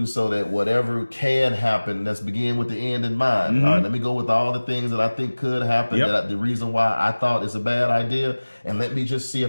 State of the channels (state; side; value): inverted; both; correlation -1.00